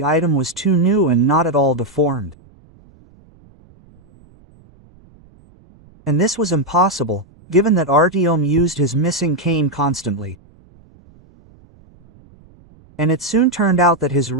item was too new and not at all deformed. And this was impossible, given that Artyom used his missing cane constantly. And it soon turned out that his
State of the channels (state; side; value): noise; right; rumble, 28 dB below the sound